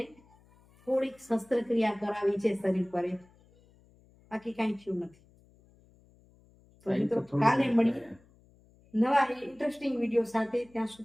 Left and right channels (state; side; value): noise; left; hum, 29 dB below the sound